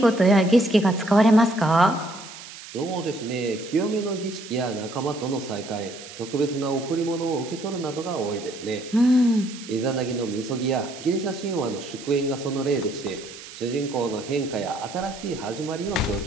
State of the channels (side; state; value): right; noise; hiss, 15 dB below the sound